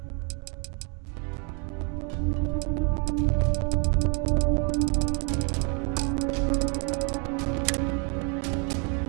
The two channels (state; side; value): quieter; left; 36.0 dB